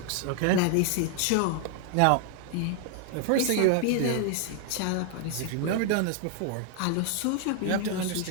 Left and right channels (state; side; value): different; both; correlation 0.00